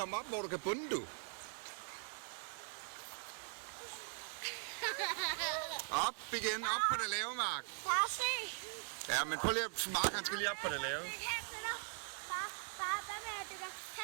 op, hvor du kan bunde, du? Op igen, op på det lave, Mark. Far, se. Ja, men prøv lige at... Mark, han skal lige op på det lave. Far, hvad med at du kan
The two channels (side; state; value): left; silent; 50 dB below the other